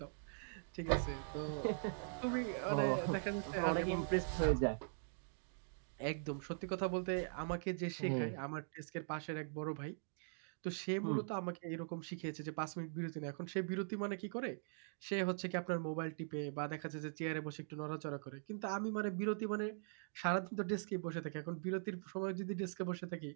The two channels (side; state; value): left; silent; digital silence